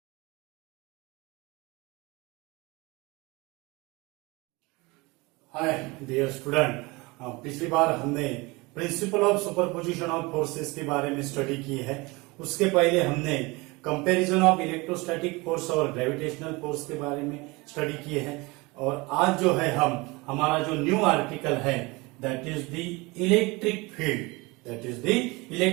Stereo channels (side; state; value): left; quieter; 24.5 dB